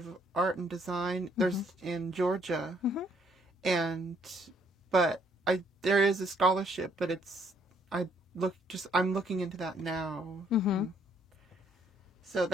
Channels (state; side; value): normal; both; correlation 0.67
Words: Art and Design. There's in Georgia. But there is a scholarship, but I'm looking into that now. So